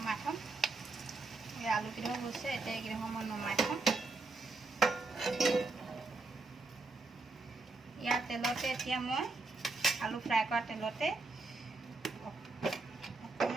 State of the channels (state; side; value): quieter; left; 3.6 dB